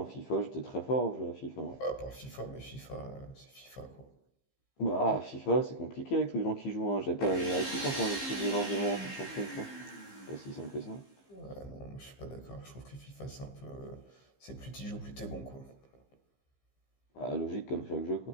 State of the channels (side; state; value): right; late; 15 ms